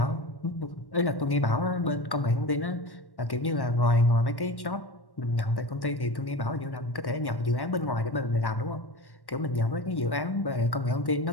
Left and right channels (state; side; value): late; right; 1.1 ms